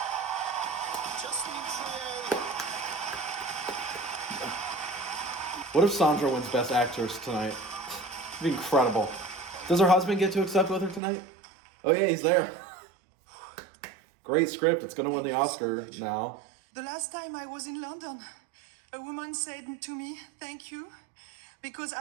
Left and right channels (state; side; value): drops out; left; at 11.0 s